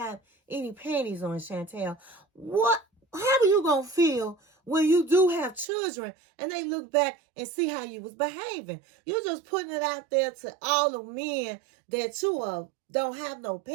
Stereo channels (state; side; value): drops out; left; at 5.7 s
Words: any panties on, Chantel. How are you going to feel when you do have children and they look back and see how you was behaving? You're just putting it out there to all the men that you don't have no